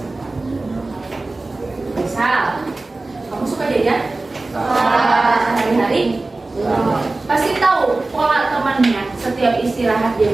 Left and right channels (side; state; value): left; quieter; 3.2 dB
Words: Misal, kamu suka jajan? Hari-hari? Pasti tahu pola temannya setiap istirahat